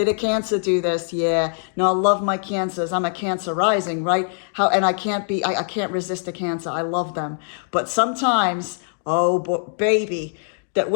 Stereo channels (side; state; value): right; silent; digital silence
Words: a Cancer do this? Yeah. No, I love my Cancers. I'm a Cancer rising, right? And I can't resist a Cancer. I love them. But sometimes, oh, baby, that